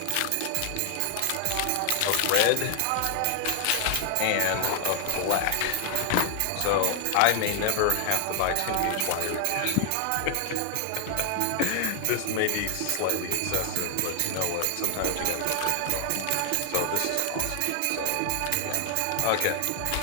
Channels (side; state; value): both; different; correlation 0.00